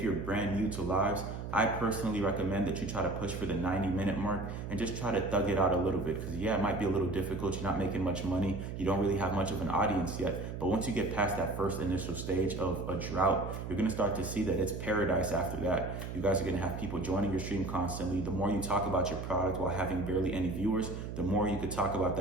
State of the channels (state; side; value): noise; right; hum, 7 dB below the sound